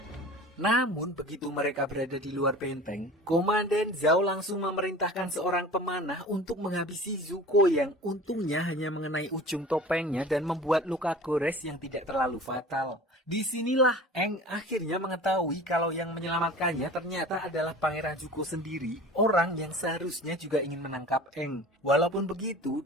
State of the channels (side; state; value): both; normal; correlation 0.40